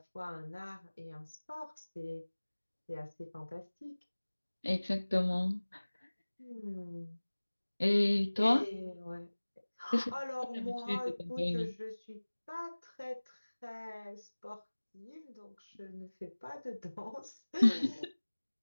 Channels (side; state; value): both; inverted; correlation -1.00